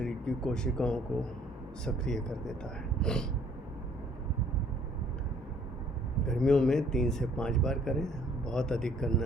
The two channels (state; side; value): normal; both; correlation 0.60